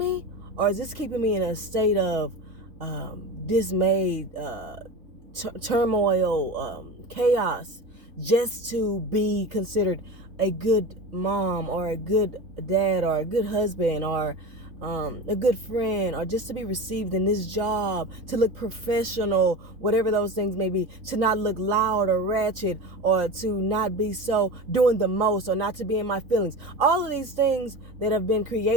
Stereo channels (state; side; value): late; left; 3.7 ms